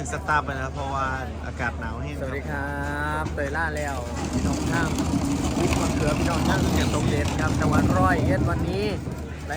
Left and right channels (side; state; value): both; identical; correlation 1.00